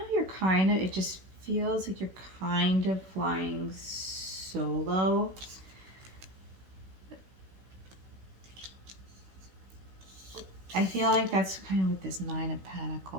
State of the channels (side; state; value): left; late; 16 ms